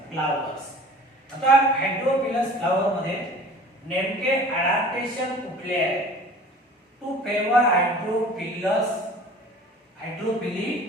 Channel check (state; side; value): normal; both; correlation 0.44